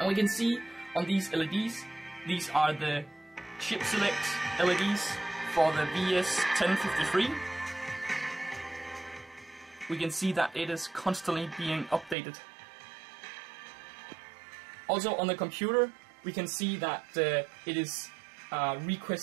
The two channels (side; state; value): left; drops out; at 12.2 s